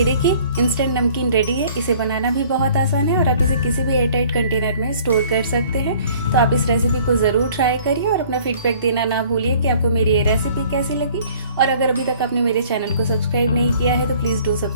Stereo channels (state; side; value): inverted; both; correlation -0.54